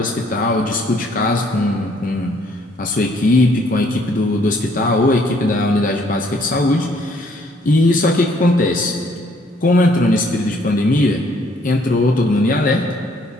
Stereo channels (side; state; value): both; normal; correlation 0.64